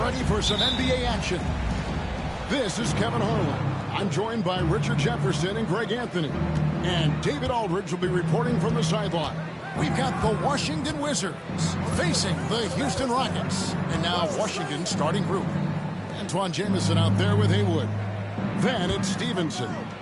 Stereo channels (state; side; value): identical; both; correlation 1.00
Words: for some NBA action. This is Kevin Harlan. I'm joined by Richard Jefferson and Greg Anthony. And David Aldridge will be reporting from the sideline. We've got the Washington Wizards facing the Houston Rockets. And now Washington's starting group. Antoine Jamison out there with Haywood. Then it's Stevenson,